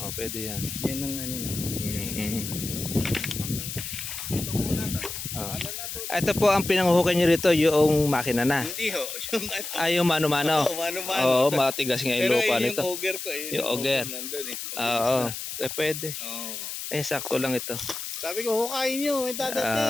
Pwede yan. Yan ang ano na. Ito muna. Ito po ang pinanguhukay nyo rito, yung makina na. Hindi ho. Yung mano-mano. Mano-mano. Oo, matigas nga yung Pero lupa yung nito. auger ko eh. Yung auger. Nandun eh. Oo, pwede. Oo. Eh, sakto lang ito. Sabi ko, hukayin nyo, may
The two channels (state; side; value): noise; left; hiss, 7 dB below the sound